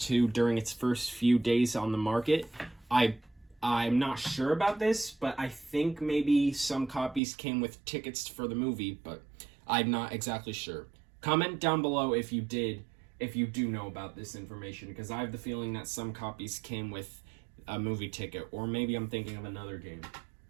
during its first few days on the market, I'm not sure about this, but I think maybe some copies came with tickets for the movie, but I'm not exactly sure. Comment down below if you do know about this information, because I have the feeling that some copies came with a movie ticket, or maybe I'm thinking of another game.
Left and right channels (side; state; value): left; drops out; at 7.2 s